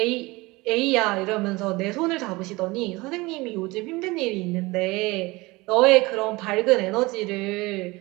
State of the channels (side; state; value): left; quieter; 22.4 dB